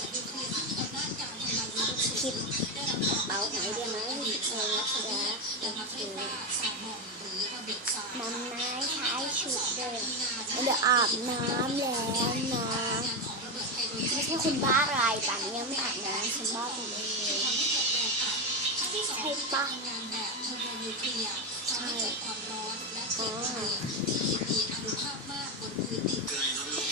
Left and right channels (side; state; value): both; normal; correlation 0.12